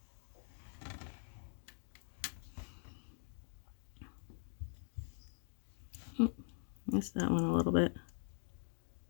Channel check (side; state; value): right; silent; digital silence